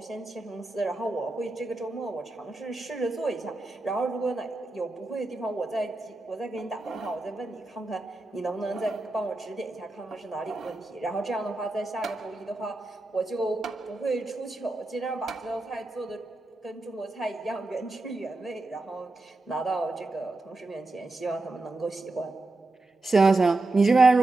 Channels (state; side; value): quieter; left; 3.1 dB